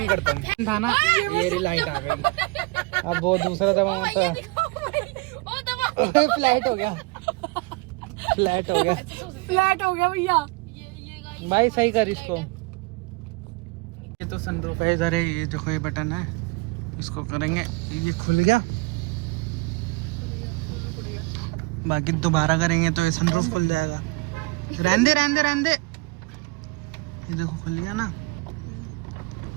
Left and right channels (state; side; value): quieter; left; 25.1 dB